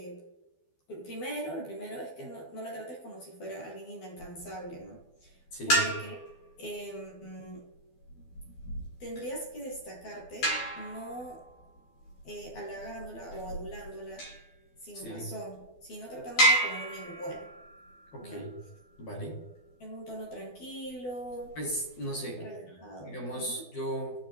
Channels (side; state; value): right; late; 12 ms